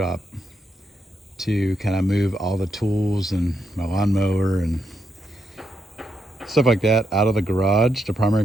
to kind of move all the tools and my lawnmower and stuff like that out of the garage, the primary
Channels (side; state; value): both; normal; correlation 0.81